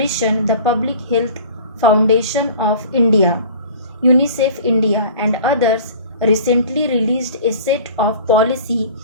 the Public Health Foundation of India, UNICEF-INDIA, and others, recently released a set of policy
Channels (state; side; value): inverted; both; correlation -0.43